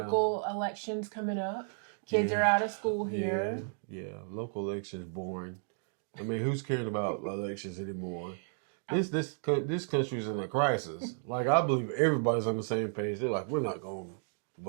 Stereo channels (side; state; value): left; silent; digital silence